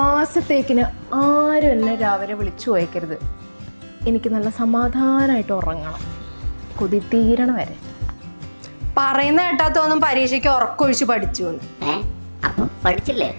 ആരും എന്നെ രാവിലെ വിളിച്ചു പോയേക്കരുത്. എനിക്ക് നല്ല സമാധാനമായിട്ട് ഉറങ്ങണം, കൊതി തീരണ വരെ. പറയുന്ന കേട്ടാത്തൊന്നും പരീക്ഷയ്ക്ക് ഉറക്കൊഴിച്ച് പഠിച്ചു പഠിച്ചില്ലേ?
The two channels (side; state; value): both; inverted; correlation -1.00